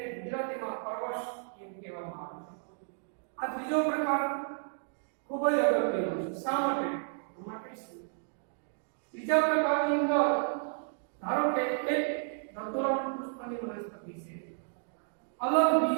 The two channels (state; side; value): silent; left; digital silence